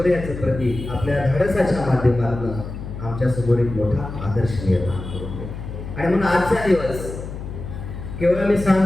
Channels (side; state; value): left; noise; hum, 9 dB below the sound